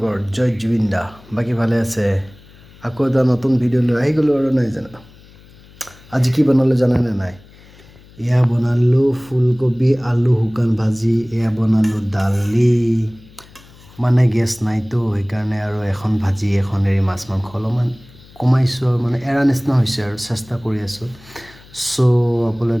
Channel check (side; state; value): left; noise; hum, 24 dB below the sound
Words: জয় জুবিন দা। বাকী ভালে আছে? আকৌ এটা নতুন ভিডিঅ' লৈ আহি গ'লোঁ আৰু নাই জানো। আজি কি বনালোঁ জানেনে নাই? এয়া বনালোঁ ফুলকবি আলু শুকান ভাজি, এয়া বনালোঁ দালি, মানে গেছ নাইতো সেইকাৰণে আৰু এখন ভাজি এখন এৰি মাছ মাংস অলপমান কমাইছোঁ আৰু মানে এৰা নিচিনা হৈছে আৰু চেষ্টা কৰি আছোঁ। চ'